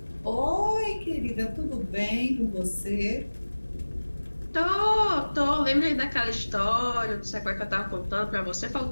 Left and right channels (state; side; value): inverted; both; correlation -1.00